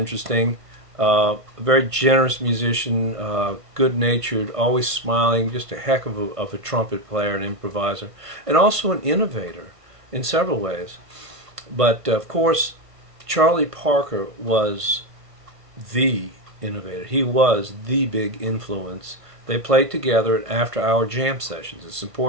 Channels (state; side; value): late; left; 1.5 ms